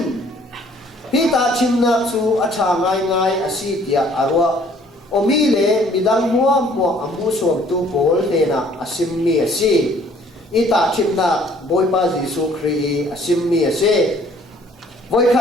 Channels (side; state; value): both; normal; correlation 0.58